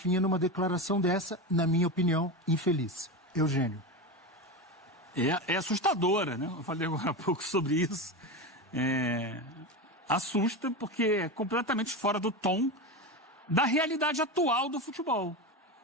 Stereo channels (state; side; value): normal; both; correlation 0.20